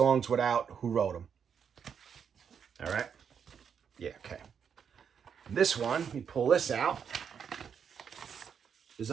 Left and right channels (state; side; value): quieter; left; 7.3 dB